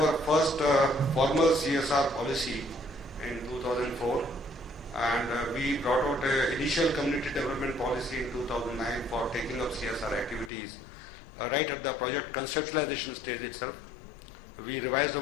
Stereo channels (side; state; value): right; drops out; at 10.5 s